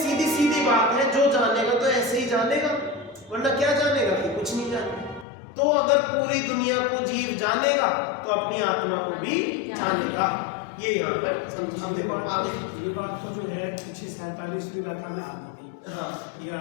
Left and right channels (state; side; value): drops out; right; at 5.2 s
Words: बात है, जो जानेगा तो ऐसे ही जानेगा, वरना क्या जानेगा कि कुछ नहीं जानेगा। तो अगर पूरी दुनिया को जीव जानेगा तो अपनी आत्मा को भी जानेगा। ये यहाँ पर समझ, देखो आगे ये बात तो जो है 47वीं गाथा में आनी थी। हाँ, ये